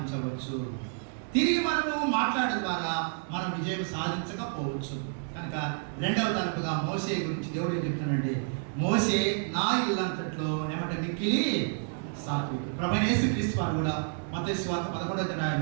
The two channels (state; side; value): silent; left; 58 dB below the other